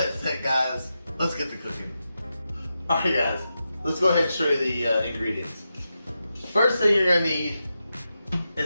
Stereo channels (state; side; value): inverted; both; correlation -0.89